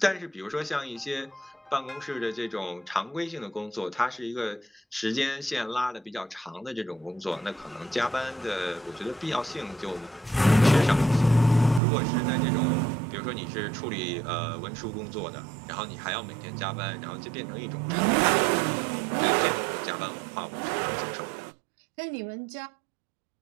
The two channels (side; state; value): left; drops out; at 11.8 s